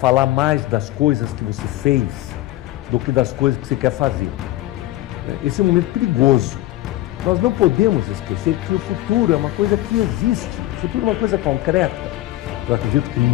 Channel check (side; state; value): right; quieter; 16.5 dB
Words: mais das coisas que você fez do que das coisas que você quer fazer. Esse é um momento perigoso. Nós não podemos esquecer que o futuro é uma coisa que existe. O futuro é uma coisa concreta. Eu acredito que